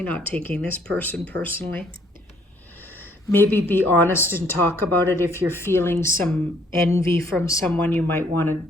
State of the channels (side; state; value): both; normal; correlation 0.65